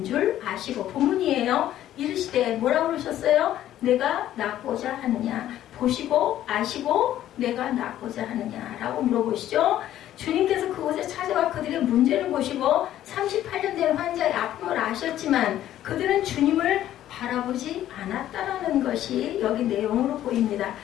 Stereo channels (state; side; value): quieter; right; 12.5 dB